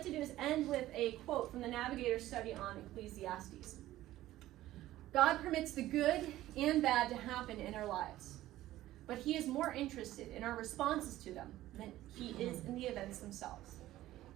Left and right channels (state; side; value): quieter; left; 15.0 dB